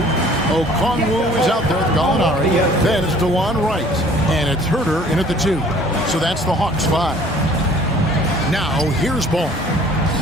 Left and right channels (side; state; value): both; normal; correlation 0.53